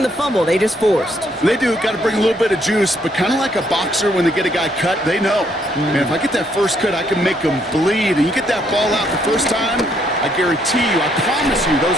the fumble. They just forced. They do. Got to bring a little bit of juice, but kind of like a boxer when they get a guy cut, they know. Man, if I get that first cut, I can make them bleed. And you get that ball out the first time, I guarantee you, I promise you,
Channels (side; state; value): both; normal; correlation 0.71